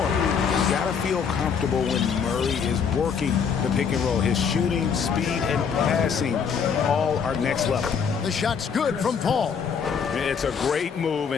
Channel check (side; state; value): right; quieter; 6.6 dB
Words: got to feel comfortable when Murray is working the pick and roll. His shooting, speed, and passing all are next level. The shot's good from Paul. It's a great move,